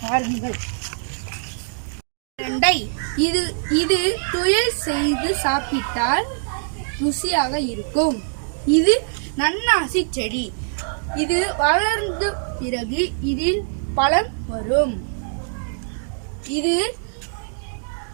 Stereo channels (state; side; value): silent; left; digital silence